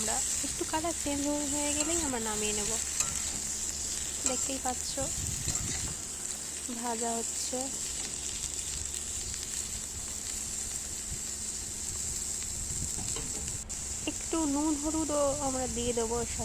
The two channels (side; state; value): both; identical; correlation 1.00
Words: একটু কালার চেঞ্জ হয়ে গেলেই আমরা নামিয়ে নেব। দেখতেই পাচ্ছ ভাজা হচ্ছে। একটু নুন হলুদও আমরা দিয়ে দেবো এর